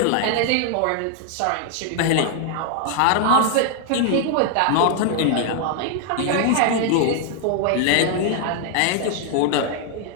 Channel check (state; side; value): different; both; correlation 0.00